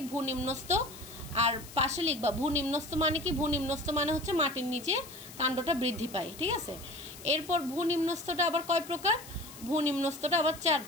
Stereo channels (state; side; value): noise; left; hiss, 16 dB below the sound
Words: ভূনিম্নস্থ। আর পাশে লিখবা ভূনিম্নস্থ মানে কি? ভূনিম্নস্থ মানে হচ্ছে মাটির নিচে কাণ্ডটা বৃদ্ধি পায়, ঠিক আছে? এরপর ভূনিম্নস্থটা আবার কয় প্রকার? ভূনিম্নস্থটা আবার 4